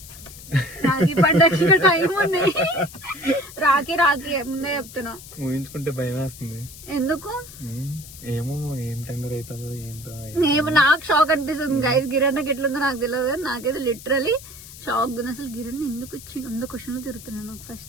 రాఖీ పండగకి ఇంకా టైం ఉంది. రాఖీ ముందే చెప్తున్నా. ఊహించుకుంటే భయం వేస్తుంది. ఎందుకు ఏమో, ఏం టెండర్ అవుతుందో ఏంటో. నాకు షాక్ అనిపిస్తుంది గైస్. గిరణ్కి ఎట్లుందో నాకు తెలియదు కానీ నాకైతే లిటరలీ షాక్ ఉంది. అసలు గిరణ్ ఎందుకు వచ్చి 100 క్వశ్చన్లు తిరుగుతున్నాను నాకు.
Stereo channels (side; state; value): left; noise; hiss, 16 dB below the sound